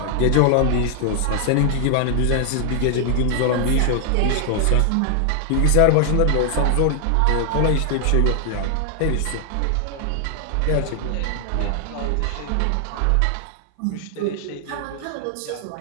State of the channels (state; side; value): different; both; correlation 0.00